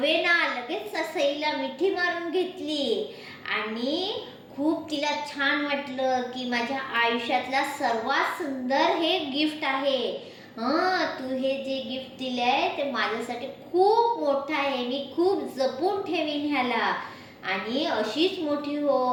लगेच सईला मिठी मारून घेतली आणि खूप तिला छान वाटलं की माझ्या आयुष्यातला सर्वात सुंदर हे गिफ्ट आहे. तू हे जे गिफ्ट दिलंय ते माझ्यासाठी खूप मोठं आहे, मी खूप जपून ठेवीन ह्याला. आणि अशीच मोठी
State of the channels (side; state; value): both; identical; correlation 1.00